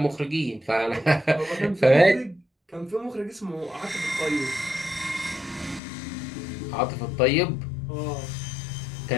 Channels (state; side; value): drops out; right; at 5.8 s